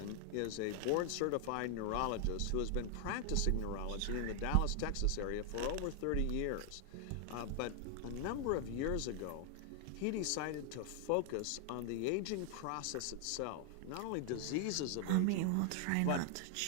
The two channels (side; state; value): both; different; correlation 0.00